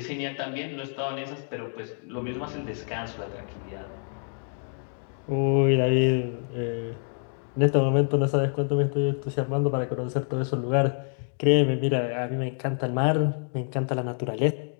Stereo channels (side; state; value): right; silent; 59 dB below the other